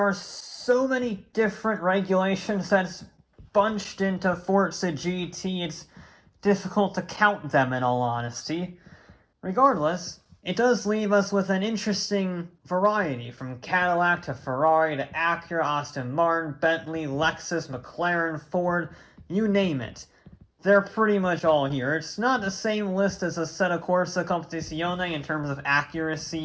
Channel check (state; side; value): identical; both; correlation 1.00